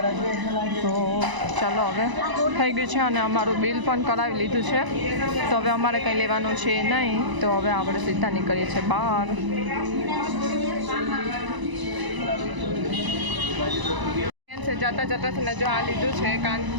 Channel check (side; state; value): left; late; 1.0 ms